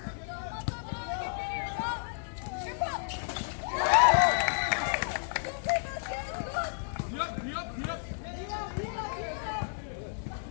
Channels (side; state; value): right; silent; digital silence